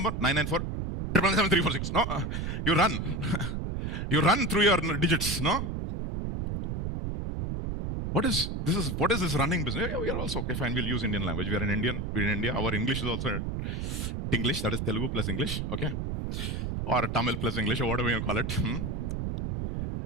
994 777 346. No, you run. You run through your digits, no? What is this running business? Yeah, we are also, okay, fine, we'll use Indian language. We are in India. Our English is also English, that is Telugu plus English, okay? Or Tamil plus English, or whatever you call it.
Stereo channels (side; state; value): right; noise; rumble, 3 dB below the sound